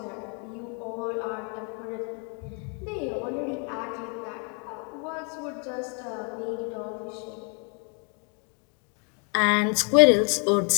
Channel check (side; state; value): right; quieter; 37.2 dB